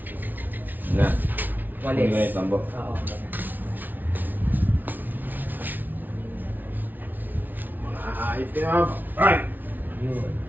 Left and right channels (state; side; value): late; left; 0.085 ms